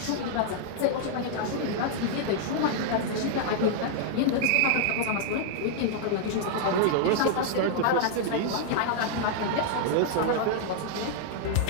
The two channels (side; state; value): both; different; correlation -0.01